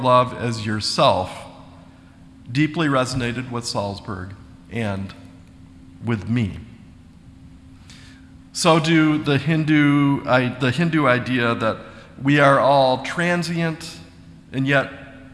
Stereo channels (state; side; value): identical; both; correlation 1.00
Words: as yourself, deeply resonated with Salzberg and with me. So do the Hindu idea that we are all transient and yet,